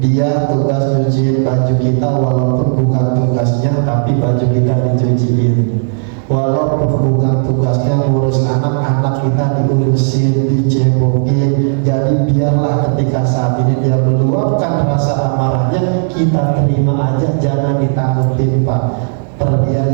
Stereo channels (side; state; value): left; silent; digital silence